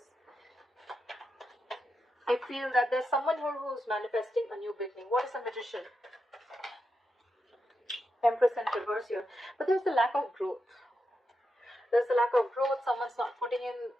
someone here who's manifesting a new beginning. What is a Magician? Empress in reverse here. But there's a lack of growth. There's a lack of growth. Someone's not putting in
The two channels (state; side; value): normal; both; correlation 0.86